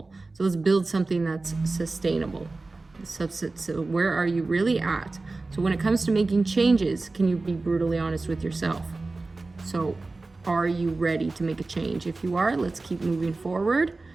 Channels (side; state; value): left; quieter; 3.4 dB